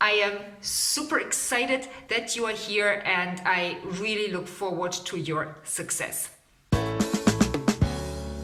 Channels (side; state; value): both; identical; correlation 1.00